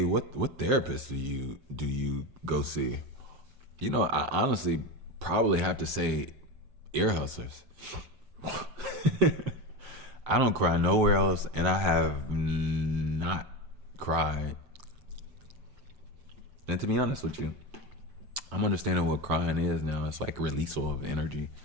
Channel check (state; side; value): late; left; 7.7 ms